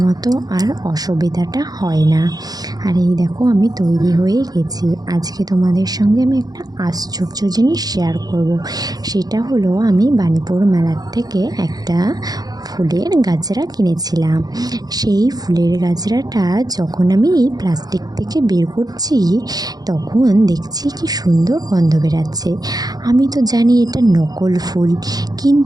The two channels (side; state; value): left; late; 0.19 ms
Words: মতো আর অসুবিধাটা হয় না। আর এই দেখো আমি তৈরি হয়ে গেছি। আজকে তোমাদের সঙ্গে আমি একটা আশ্চর্য জিনিস শেয়ার করব। সেটা হলো আমি বাণীপুর মেলার থেকে একটা ফুলের গাজরা কিনেছিলাম। সেই ফুলের গাজরাটা যখন আমি প্লাস্টিক থেকে বের করছি তখন দেখছি কি সুন্দর গন্ধ বেরাচ্ছে। আমি তো জানি এটা নকল ফুল,